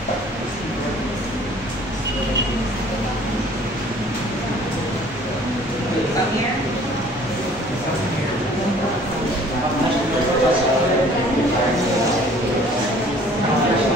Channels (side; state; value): both; normal; correlation 0.53